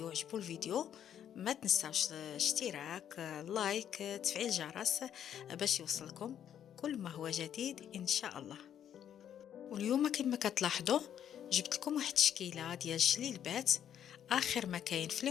عجبو الفيديو ما تنساوش الاشتراك، لايك، تفعيل الجرس باش يوصلكم كل ما هو جديد إن شاء الله. واليوم كما كتلاحظوا جبت لكم واحد التشكيله ديال الجليلبات اخر ما كاين في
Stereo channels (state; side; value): quieter; right; 9.7 dB